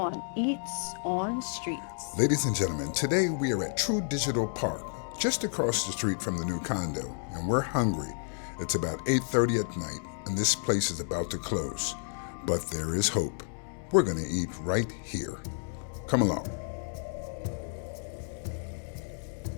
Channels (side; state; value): right; silent; 57 dB below the other